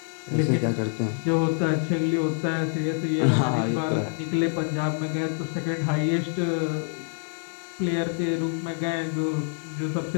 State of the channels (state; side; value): silent; right; 61 dB below the other